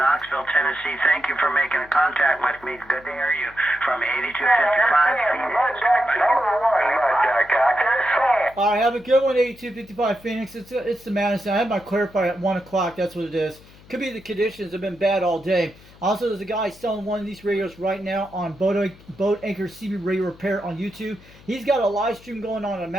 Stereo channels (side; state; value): left; noise; hum, 24 dB below the sound